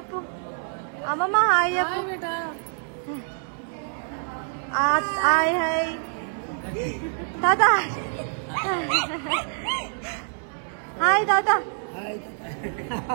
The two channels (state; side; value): silent; left; 61 dB below the other